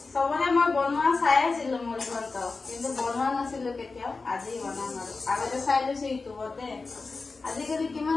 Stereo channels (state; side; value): quieter; right; 4.0 dB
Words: চবৰে মই বনোৱা চাই আছিলো মুড়ি ঘন্টা কিন্তু বনোৱা নাছিলো কেতিয়াও আজি বনাম আৰু আগতে চাই লৈছো ইউটিউবতে আজিকালি কিমান